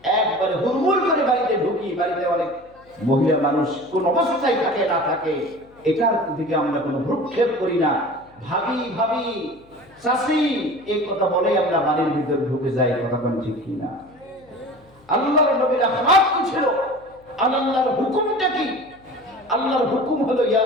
একবারে হুড়মুড় করে বাড়িতে ঢুকি। বাড়িতে অনেক মহিলা মানুষ কোন অবস্থায় থাকে না থাকে, এটার দিকে আমরা কোনো ভ্রুক্ষেপ করি না। ভাবি ভাবি চাচি এই কথা বলে আমরা বাড়ির ভিতরে ঢুকে যাই, কথা কোন ঠিক কিনা? আল্লাহর নবীর আখলাক কি ছিল? আল্লাহর হুকুমটা কি? আল্লাহর হুকুম হলো ইয়া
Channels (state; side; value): noise; left; hum, 29 dB below the sound